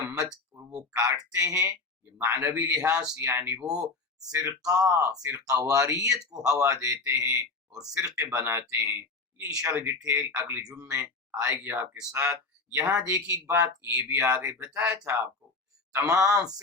مت، وہ کاٹتے ہیں، یہ معنوی لحاظ سے یعنی وہ فرقہ واریت کو ہوا دیتے ہیں اور فرقے بناتے ہیں۔ یہ انشاءاللہ ڈیٹیل اگلے جمعے آئے گی آپ کے ساتھ۔ یہاں دیکھیے ایک بات یہ بھی آگے بتایا تھا آپ کو، تمام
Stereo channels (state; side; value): quieter; right; 3.9 dB